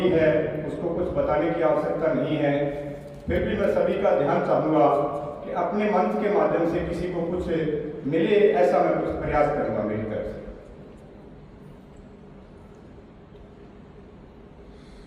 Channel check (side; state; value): both; identical; correlation 1.00